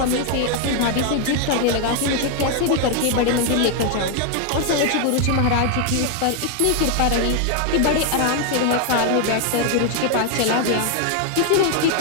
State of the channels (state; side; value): different; both; correlation 0.01